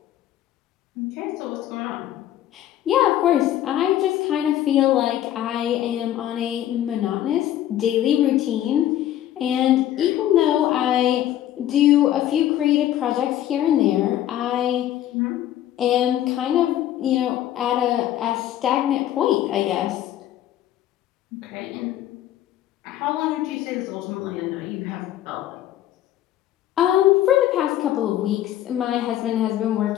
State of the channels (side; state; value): right; quieter; 12.3 dB